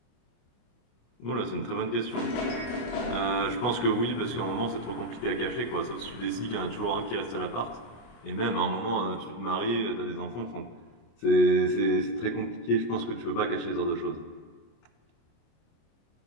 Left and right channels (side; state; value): right; late; 25 ms